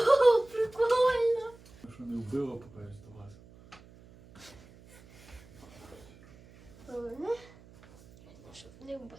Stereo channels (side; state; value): right; noise; hum, 23 dB below the sound